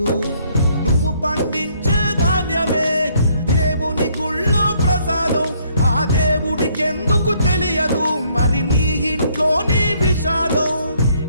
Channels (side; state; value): both; inverted; correlation -0.67